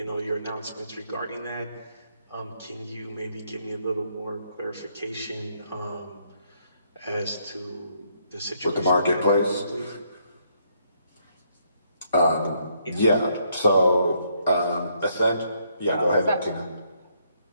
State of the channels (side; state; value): both; inverted; correlation -0.72